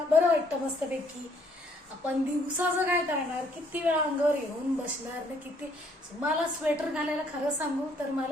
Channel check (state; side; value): normal; both; correlation 0.66